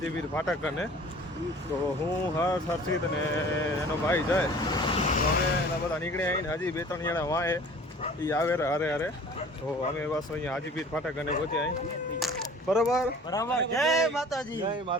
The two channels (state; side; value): normal; both; correlation 0.47